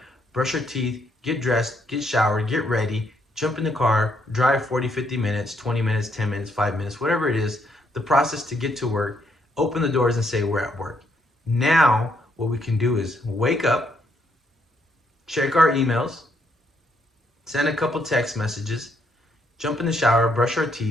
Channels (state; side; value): normal; both; correlation 0.73